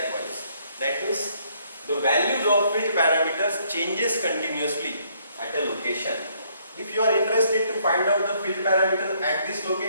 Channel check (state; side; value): inverted; both; correlation -0.68